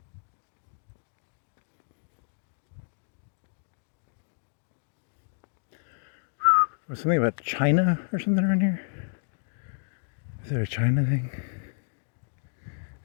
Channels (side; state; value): right; silent; digital silence